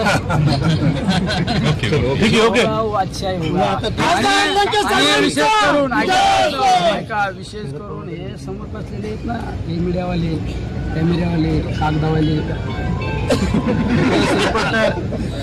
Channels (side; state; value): both; identical; correlation 1.00